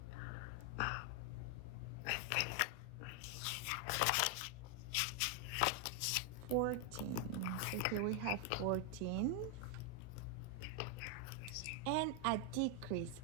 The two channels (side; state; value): both; different; correlation 0.01